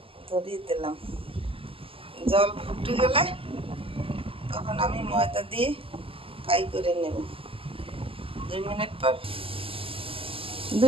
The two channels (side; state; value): left; late; 0.26 ms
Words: ধরিয়ে দিলাম। জল ফুটে গেলে তখন আমি ময়দা দিয়ে ফ্রাই করে নেব। 2